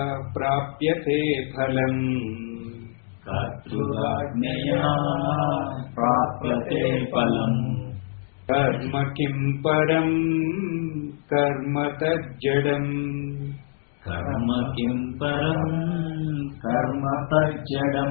ప్రాప్యతే ఫలం, కర్తృరాజ్ఞయా ప్రాప్యతే ఫలం, కర్మ కిం పరం కర్మ తజ్జడం, కర్మ కిం పరం కర్మ తజ్జడం.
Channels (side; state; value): right; silent; digital silence